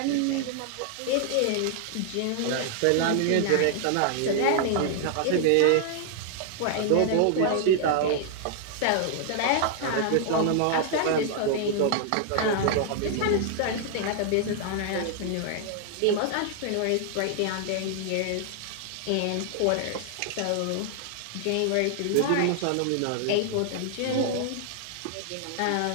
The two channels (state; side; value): different; both; correlation -0.01